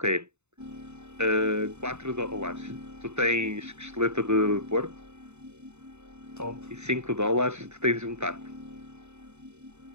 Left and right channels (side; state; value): left; late; 0.82 ms